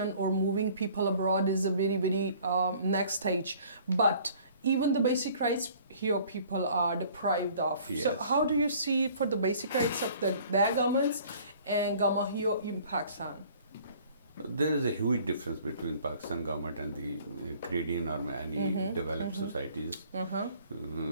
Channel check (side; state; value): both; inverted; correlation -0.53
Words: or moving people abroad is a very, very next stage, but even the basic rights here people are deprived of. So how do you see for the basic rights of their governments and government here in Pakistan? There is a huge difference between Pakistan government and the Canadian or any developed societies